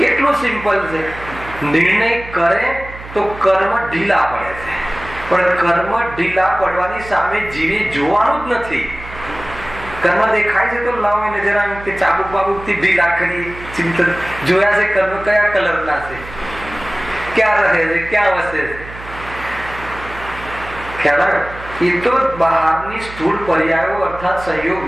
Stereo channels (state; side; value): noise; right; hum, 14 dB below the sound